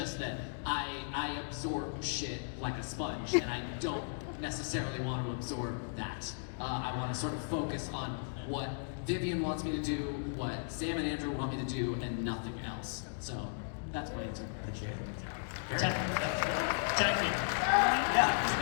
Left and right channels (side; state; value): right; silent; digital silence